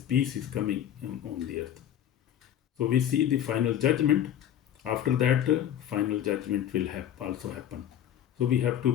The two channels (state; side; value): quieter; right; 10.5 dB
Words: is coming on the earth. So we see the final judgment. After that, final judgment will also happen. So we have